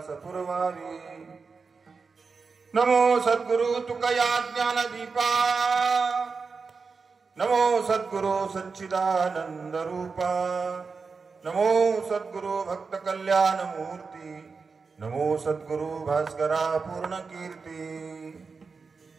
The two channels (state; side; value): quieter; left; 4.8 dB